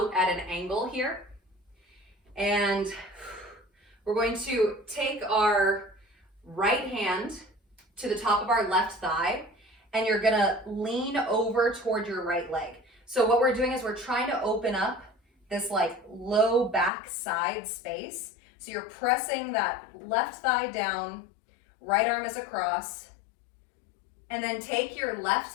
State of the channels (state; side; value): drops out; right; at 16.9 s